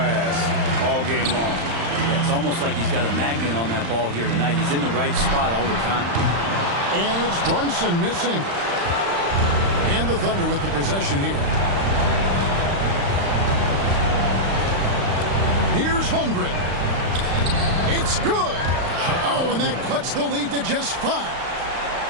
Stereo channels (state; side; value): late; left; 35 ms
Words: all game long. Yeah, it's almost like he's got a magnet on that ball here tonight. He's in the right spot all the time. And it's Brunson missing. And the Thunder with the possession here. Here's Holmgren. It's good. Oh, and that cuts the lead to just 5.